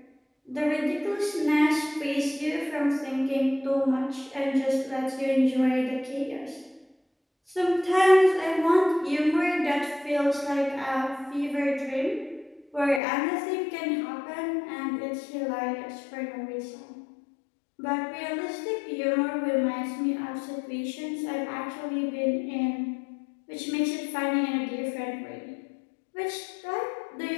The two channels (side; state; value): right; drops out; at 13.0 s